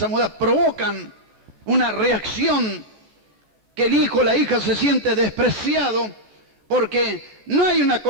a mudar. Provocan una reacción que el hijo o la hija se siente despreciado porque no hay una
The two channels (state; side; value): late; left; 14 ms